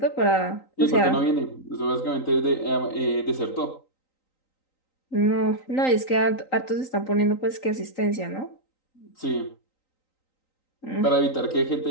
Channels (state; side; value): late; right; 3.9 ms